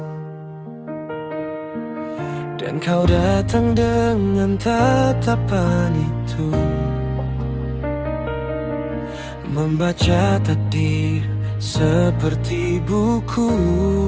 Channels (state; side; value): identical; both; correlation 1.00